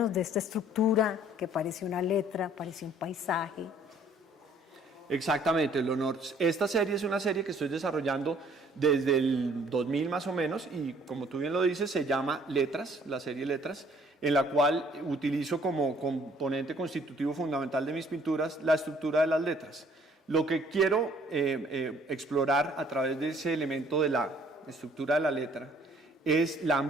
de esta estructura que parece una letra, parece un paisaje. Exactamente, Leonor. Esta serie es una serie que estoy desarrollando desde el 2000 más o menos, y como tú bien lo dices, se llama Letras, la serie Letras, en la cual utilizo como componente constitutivo fundamental de mis pinturas la estructura de las letras. Lo que quiero explorar a través de ese elemento de la estructura de la letra es la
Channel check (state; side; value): normal; both; correlation 0.59